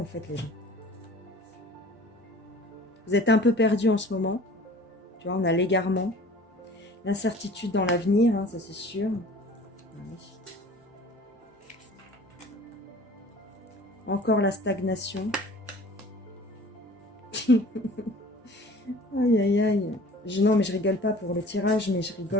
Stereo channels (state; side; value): normal; both; correlation 0.46